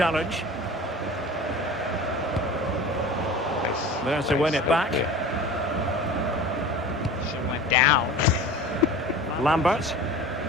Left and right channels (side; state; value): both; normal; correlation 0.37